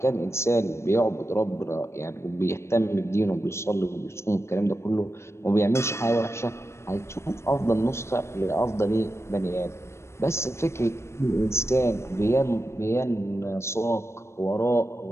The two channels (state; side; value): late; right; 0.13 ms